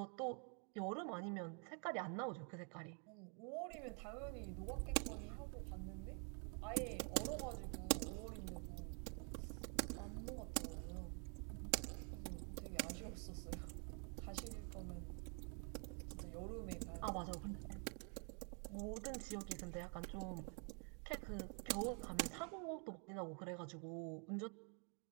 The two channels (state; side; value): quieter; left; 39.0 dB